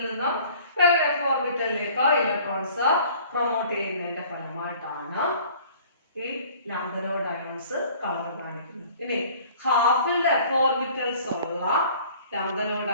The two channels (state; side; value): inverted; both; correlation -0.50